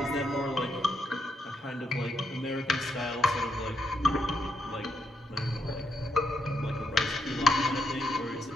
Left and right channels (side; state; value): both; normal; correlation 0.79